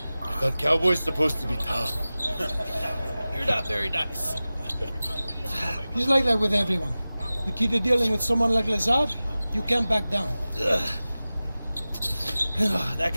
I thought cowboys supposed to be tough. You're not very nice. He's like that with everyone. You keep dealing with someone like Lazard, you can't back down. That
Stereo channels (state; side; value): inverted; both; correlation -0.97